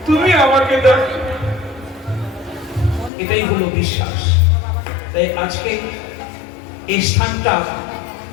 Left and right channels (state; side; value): drops out; right; at 3.1 s